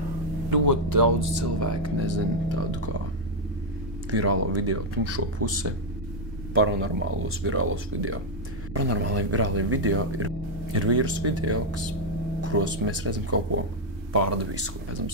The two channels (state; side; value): normal; both; correlation 0.00